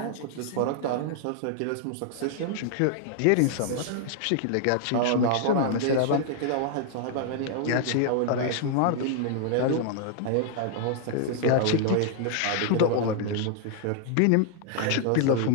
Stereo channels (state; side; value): different; both; correlation 0.00